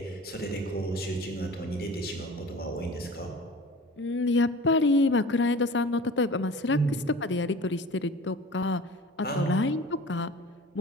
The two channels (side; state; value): both; normal; correlation 0.40